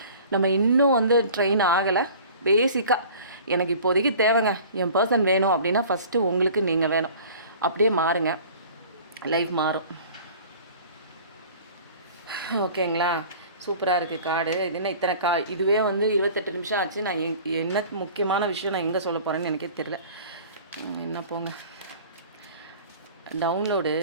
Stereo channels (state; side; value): inverted; both; correlation -0.45